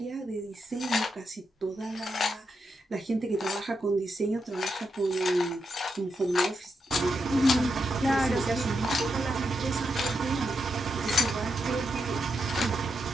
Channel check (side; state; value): both; normal; correlation 0.84